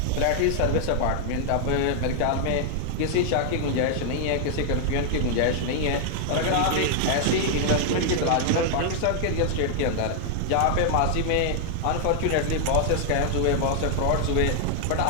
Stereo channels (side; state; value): both; different; correlation -0.01